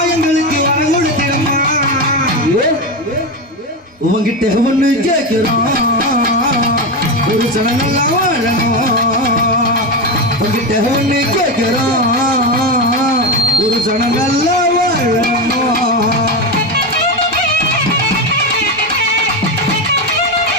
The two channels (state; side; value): normal; both; correlation 0.14